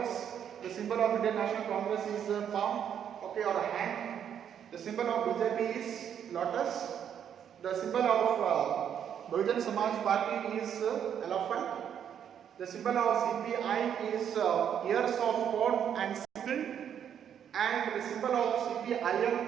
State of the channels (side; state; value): left; quieter; 8.9 dB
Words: The symbol of Indian National Congress is a palm, okay, or a hand. The symbol of BJP is lotus. The symbol of Bahujan Samaj Party is elephant. The symbol of CPI is ears of corn and sickle, and the symbol of